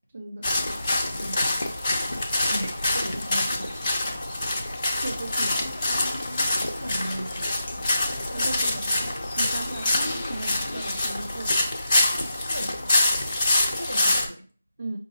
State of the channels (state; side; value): inverted; both; correlation -0.87